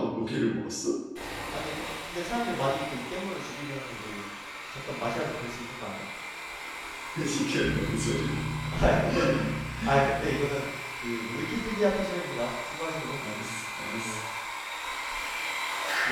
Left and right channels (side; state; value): both; identical; correlation 1.00